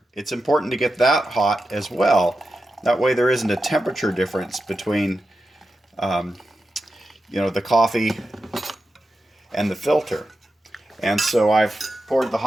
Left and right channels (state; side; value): normal; both; correlation 0.90